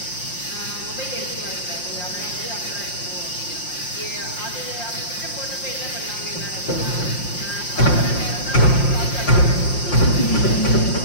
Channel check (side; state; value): right; late; 5.7 ms